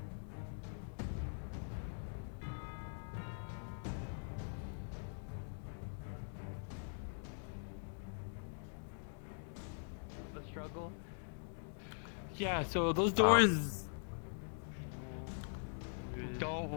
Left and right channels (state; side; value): silent; right; digital silence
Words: The struggle. Yeah, so those doors don't